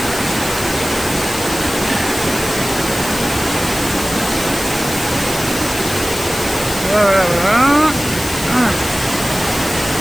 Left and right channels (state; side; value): noise; left; hiss, 9 dB below the sound